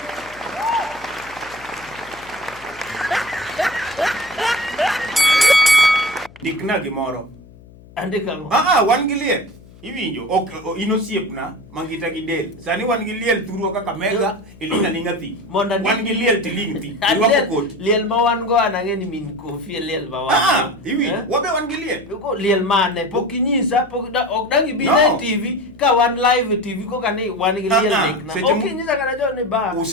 Dikna gimoro. Andika ngo. Wangilie. Iwinjo inosiepna mangita gidel sani wan gi liel turo kaka mega ilinga linga thi wan gi liel tiling thi irwako kot liel ma wan go anange ni min kofi liel ma wan iwi wabe wan gi liel ko liel mane pokinyisa ok dangi bi na TV ka wan live TV ko kani wan gi liel dik na okinyisa kana jo ne ba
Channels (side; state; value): left; noise; hum, 22 dB below the sound